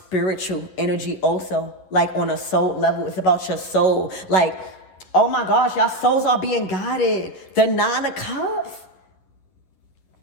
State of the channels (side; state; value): right; late; 11 ms